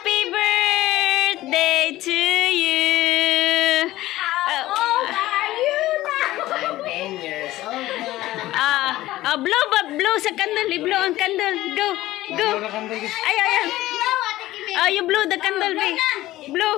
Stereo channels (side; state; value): right; quieter; 16.3 dB